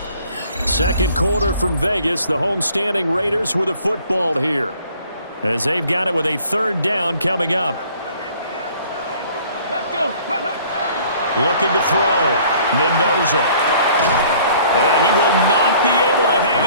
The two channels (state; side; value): inverted; both; correlation -0.55